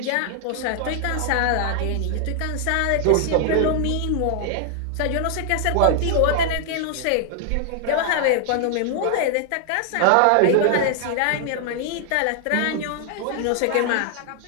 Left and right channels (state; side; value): different; both; correlation 0.00